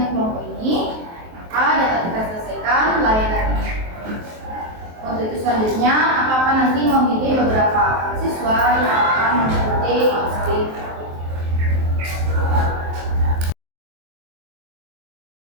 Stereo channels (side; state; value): left; late; 23 ms